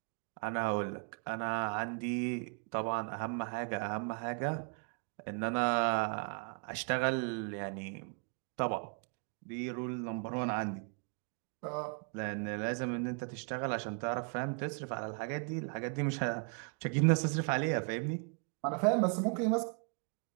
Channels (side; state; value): left; quieter; 39.0 dB